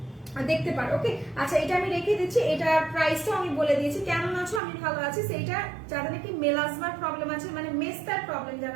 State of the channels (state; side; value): drops out; left; at 4.6 s